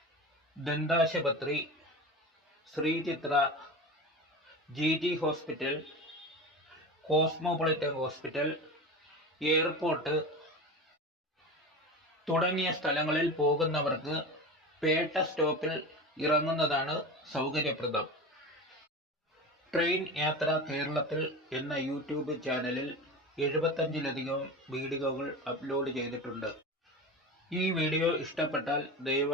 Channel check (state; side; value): normal; both; correlation 0.28